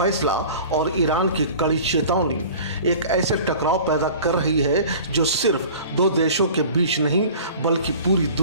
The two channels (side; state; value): both; inverted; correlation -0.42